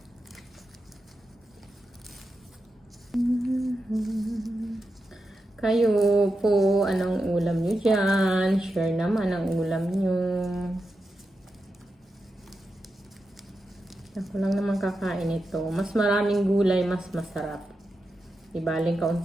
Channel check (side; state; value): both; normal; correlation 0.89